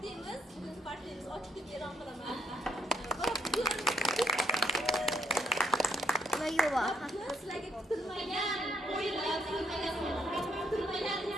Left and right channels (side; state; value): both; normal; correlation 0.72